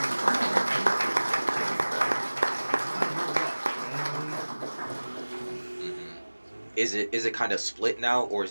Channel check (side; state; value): both; inverted; correlation -1.00